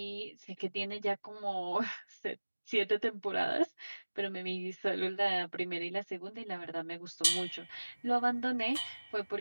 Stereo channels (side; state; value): both; inverted; correlation -1.00